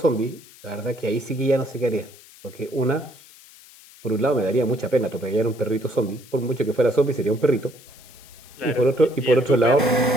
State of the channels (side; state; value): left; noise; hiss, 22 dB below the sound